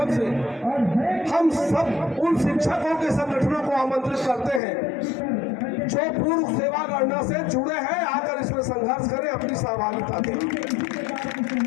से हम सब उन शिक्षकों के संगठनों को आमंत्रित करते हैं जो पूर्व सेवा गणना से जुड़े हैं, आकर इसमें संघर्ष करें, अपनी सहभागिता दें।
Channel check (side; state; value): right; drops out; at 4.6 s